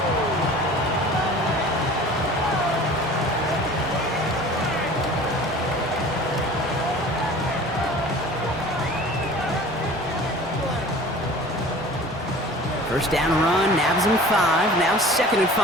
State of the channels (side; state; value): both; normal; correlation 0.43